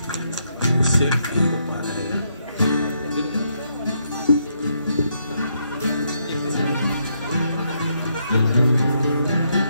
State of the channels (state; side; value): inverted; both; correlation -0.76